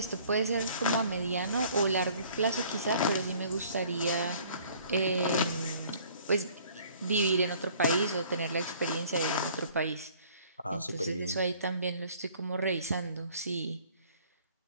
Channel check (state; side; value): inverted; both; correlation -0.55